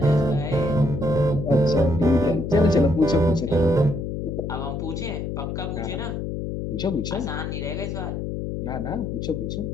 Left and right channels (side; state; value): left; noise; hum, 4 dB below the sound